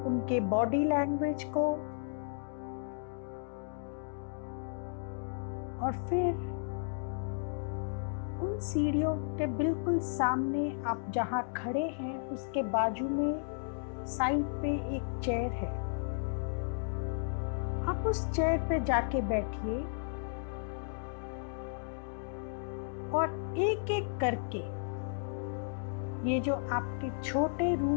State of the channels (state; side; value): silent; right; digital silence